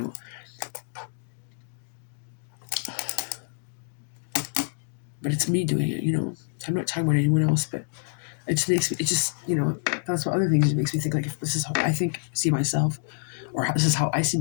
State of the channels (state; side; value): silent; right; 60 dB below the other